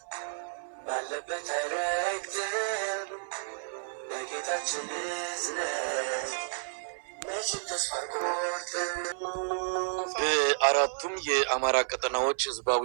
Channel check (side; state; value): left; silent; 57 dB below the other